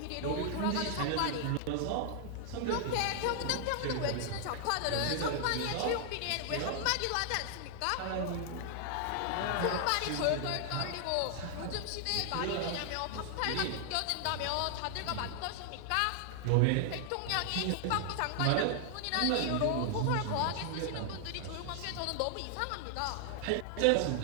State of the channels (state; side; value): different; both; correlation 0.00